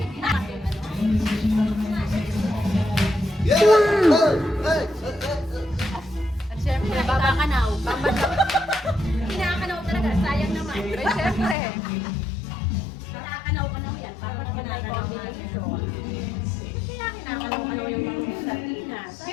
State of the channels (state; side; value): drops out; right; at 11.6 s